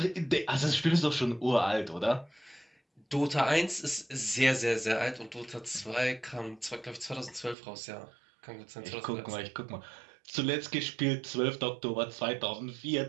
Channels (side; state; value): left; drops out; at 7.6 s